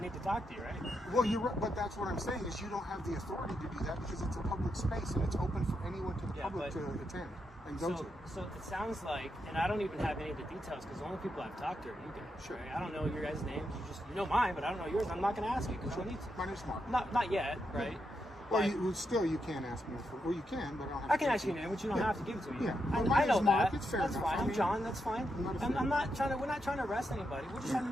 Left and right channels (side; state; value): both; normal; correlation 0.83